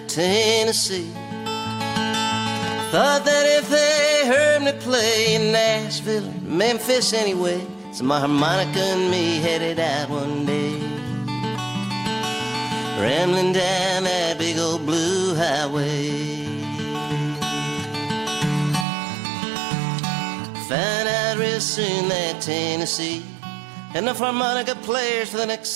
Tennessee. Thought that if they heard me play in Nashville or Memphis anyway, so my harmonica and me headed out one day, rambling down that big old blue highway. Found out real soon that Tennessee had enough harmonica players for the next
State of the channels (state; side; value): drops out; left; at 18.9 s